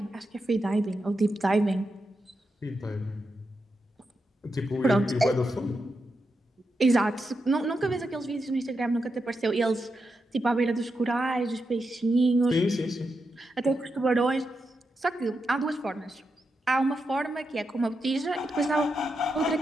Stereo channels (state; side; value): normal; both; correlation 0.86